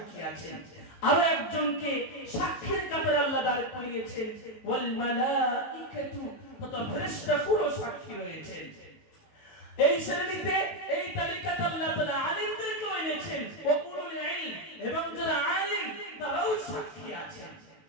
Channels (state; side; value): late; right; 18 ms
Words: আছেন। আরো একজনকে সাক্ষীর কাতারে আল্লাহ দাঁড় করিয়েছেন, ওয়াল মালাইকাতু, তথা ফেরেশতাকুলও সাক্ষী রয়েছেন। এই শ্রেণীতে, এই তালিকাতে আল্লাহ তাআলা আলিমদেরকেও এনেছেন, ওয়া উলুল ইলম, এবং যারা আলিম তারাও সাক্ষী আছেন।